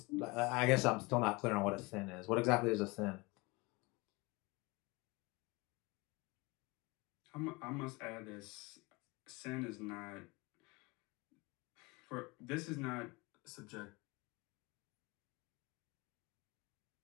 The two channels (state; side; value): quieter; right; 24.8 dB